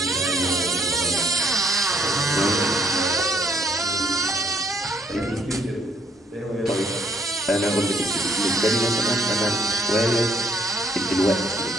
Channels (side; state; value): both; normal; correlation 0.67